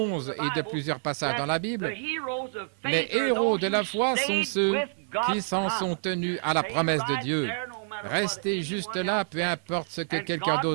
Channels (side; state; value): left; silent; 60 dB below the other